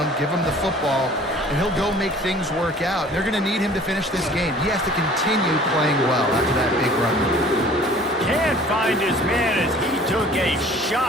give him the football, and he'll go make things work out. They're going to need him to finish this game. He has to continue playing well after that big run. Can't find his man as he took a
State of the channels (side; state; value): both; normal; correlation 0.50